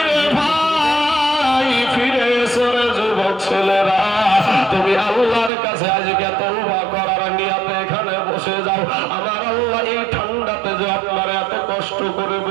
তুমি আল্লাহর কাছে আজকে তওবা করার নিয়তে এখানে বসে যাও। আমার আল্লাহ এই ঠান্ডাতে যে আপনারা এত কষ্ট করে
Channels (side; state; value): left; drops out; at 5.5 s